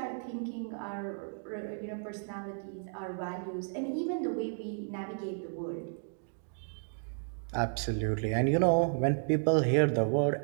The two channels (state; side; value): silent; left; digital silence